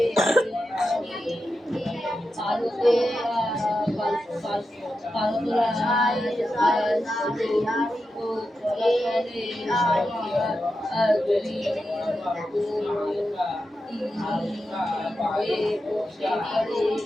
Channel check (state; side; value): normal; both; correlation 0.89